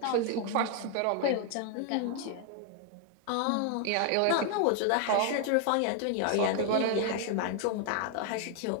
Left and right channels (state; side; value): different; both; correlation 0.00